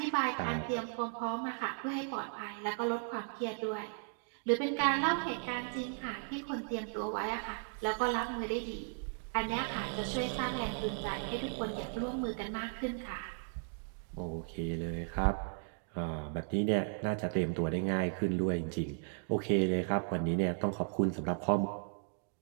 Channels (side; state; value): left; silent; 54 dB below the other